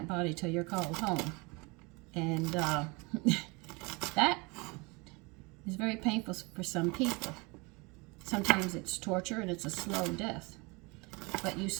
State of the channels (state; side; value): quieter; left; 27.5 dB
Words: body till you're called home. And that is very painful for some people. Sometimes it's torture and it's a slow death. But you